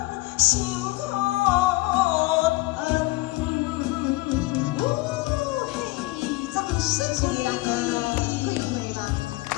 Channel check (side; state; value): right; quieter; 21.4 dB